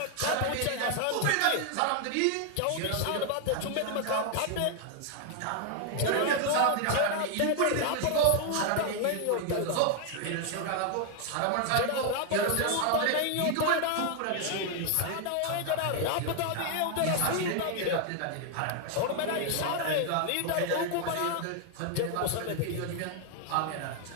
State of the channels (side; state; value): both; different; correlation 0.00